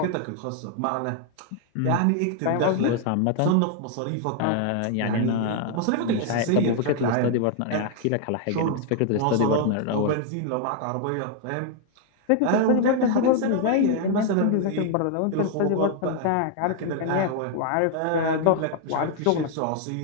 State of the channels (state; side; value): different; both; correlation 0.00